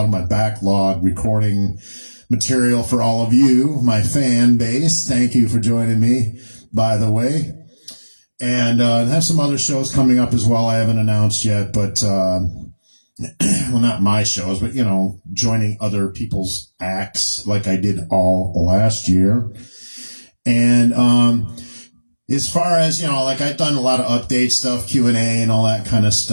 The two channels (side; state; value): both; inverted; correlation -1.00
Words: of my backlog, recording material for all of you, my fan base. Thank you for joining me, by the way. And have some other shows coming up as well I haven't announced yet, but well, not my shows, but, you know, joining other people's acts like I did all last year. And as far as, you know, like I've done a lot of update stuff, Q&A and all that kind of